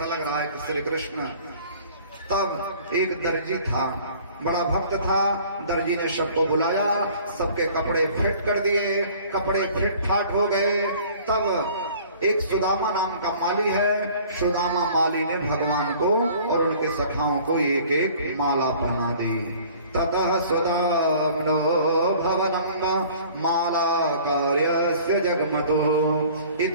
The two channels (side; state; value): both; inverted; correlation -0.50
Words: लग रहा है श्री कृष्ण। तब एक दर्जी था, बड़ा भक्त था। दर्जी ने सबको बुलाया, सबके कपड़े फिट कर दिए। कपड़े फिट फाट हो गए। तब एक सुदामा नाम का माली है, सुदामा माली ने भगवान को और उनके सखाओं को एक एक माला पहना दी। ततः सुदाम्नो भवनम माला कार्यस्य जगमतो। ये